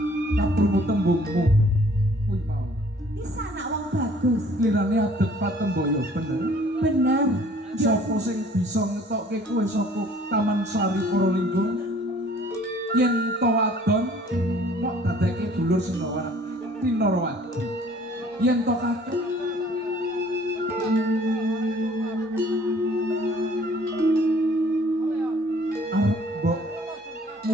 tak perlu tembungmu. Kuwi mau. Iki sanak wong bagus. Lirane adep patemboyo bener. Bener. Sopo sing bisa ngetokke kowe saka Taman Sari Porolinggo? Yen to wadon kok dadeke dulur Sinawan Tinarawati. Yen to kakek arep mbok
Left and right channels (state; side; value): normal; both; correlation 0.55